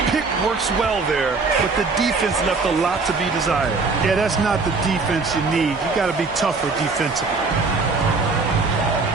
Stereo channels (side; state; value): left; quieter; 4.1 dB